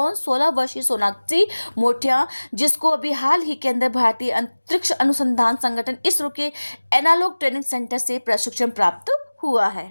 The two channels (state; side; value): inverted; both; correlation -1.00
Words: 16 वर्षीय सोनाक्षी मोठिया, जिसको अभी हाल ही के अंदर भारतीय अंतरिक्ष अनुसंधान संगठन इसरो के एनालॉग ट्रेनिंग सेंटर से प्रशिक्षण प्राप्त हुआ